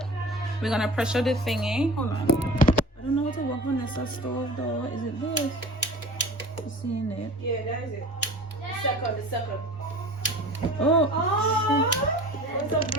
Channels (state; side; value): normal; both; correlation 0.39